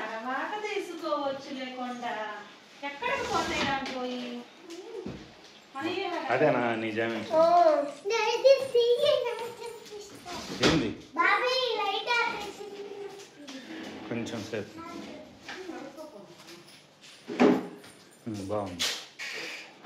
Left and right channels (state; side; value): identical; both; correlation 1.00